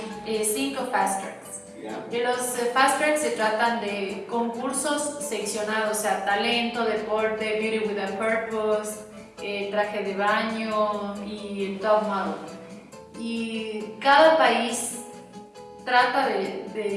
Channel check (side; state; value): both; identical; correlation 1.00